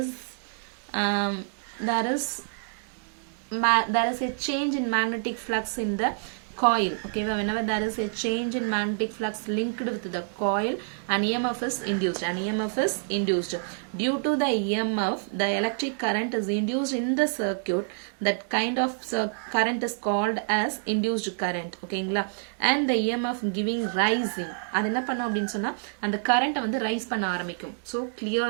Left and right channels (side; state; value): left; silent; digital silence